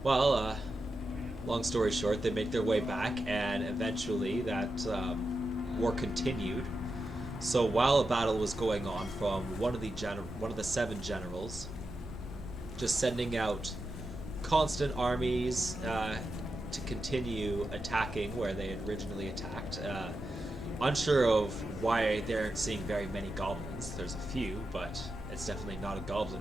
Well, long story short, they make their way back, and eventually that war continued. So while a battle was going on, from one of the seven generals, just sending out constant armies to continue attacking where they had originally attacked. Unsure of why they aren't seeing very many goblins. There's a few, but it's definitely not a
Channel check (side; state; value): right; noise; hum, 22 dB below the sound